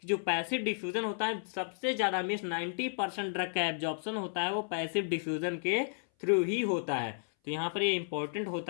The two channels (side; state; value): right; silent; 56 dB below the other